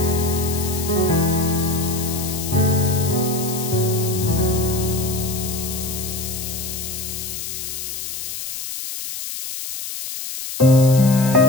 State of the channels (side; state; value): left; noise; hiss, 7 dB below the sound